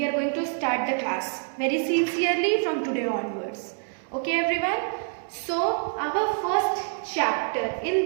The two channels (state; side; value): silent; left; 61 dB below the other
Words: are going to start the class very sincerely from today onwards. Okay everyone, so our first chapter